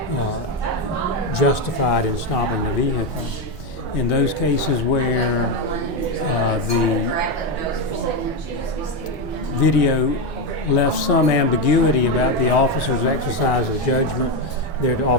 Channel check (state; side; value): normal; both; correlation 0.10